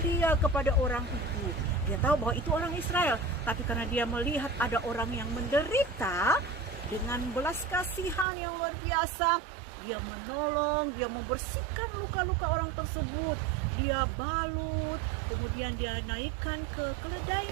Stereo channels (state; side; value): drops out; left; at 8.2 s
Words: kepada orang itu. Dia tahu bahwa itu orang Israel, tapi karena dia melihat ada orang yang menderita, dengan belas kasihan yang luar biasa, dia menolong, dia membersihkan luka-luka orang tersebut. Dia balut, kemudian dia naikkan ke